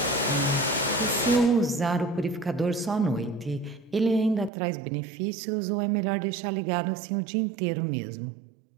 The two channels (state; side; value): drops out; left; at 4.5 s